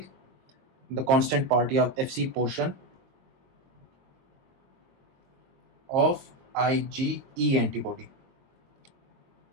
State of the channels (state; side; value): late; left; 22 ms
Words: द कांस्टेंट पार्ट या FC portion of IgE antibody,